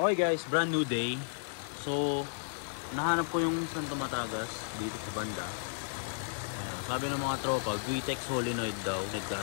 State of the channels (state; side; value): silent; right; digital silence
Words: guys, brand new day. So, nahanap ko yung Santo Matagas dito sa banda. Ayan, sabi ng mga tropa, Guitex solenoid daw,